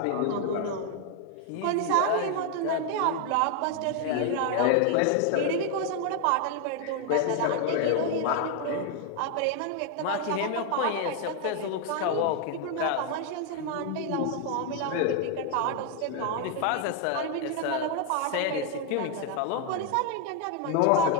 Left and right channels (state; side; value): different; both; correlation 0.01